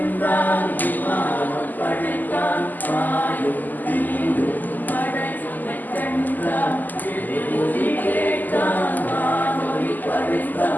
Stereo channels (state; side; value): late; right; 0.085 ms